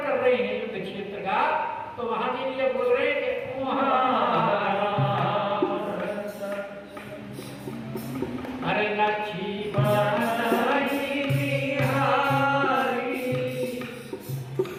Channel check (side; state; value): both; identical; correlation 1.00